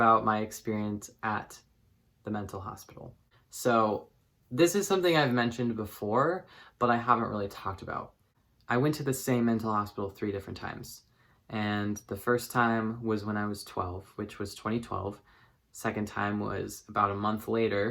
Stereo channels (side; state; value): both; identical; correlation 1.00